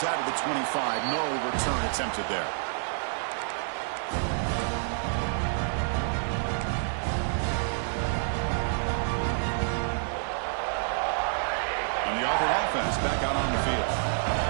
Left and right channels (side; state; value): left; silent; digital silence